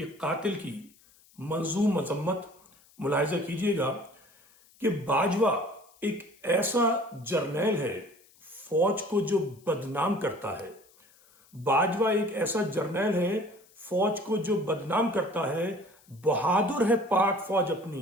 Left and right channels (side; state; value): left; noise; hiss, 29 dB below the sound